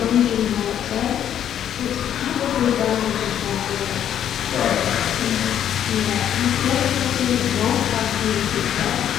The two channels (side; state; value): right; quieter; 10.0 dB